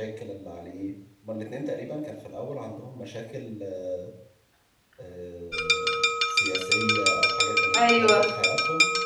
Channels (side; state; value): both; identical; correlation 1.00